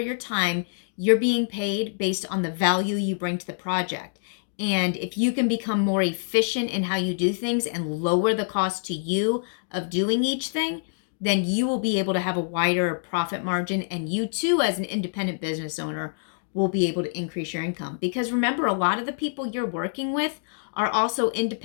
time. You're being paid based on the value you bring to the project. And if you can become more efficient in how you do things and lower the cost to you of doing each thing, then you will be able to have a wider profit margin. And you too, as an independent business owner, will be able to increase your income. Because remember, a lot of the people you're working with are also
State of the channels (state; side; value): silent; right; digital silence